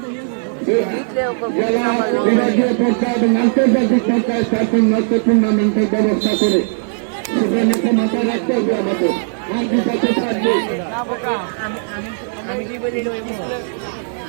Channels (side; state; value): left; silent; 67 dB below the other